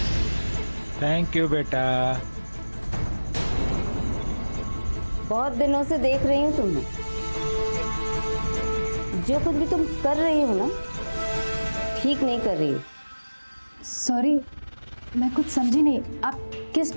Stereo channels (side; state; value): both; inverted; correlation -1.00